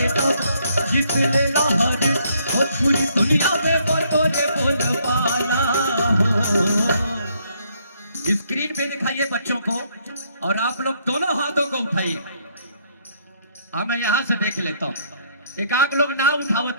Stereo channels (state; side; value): inverted; both; correlation -0.69